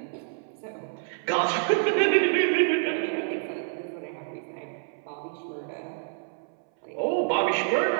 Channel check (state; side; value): silent; left; 60 dB below the other